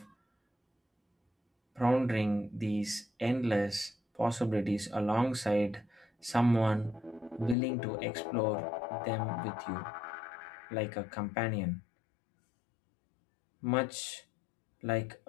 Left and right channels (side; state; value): right; drops out; at 7.6 s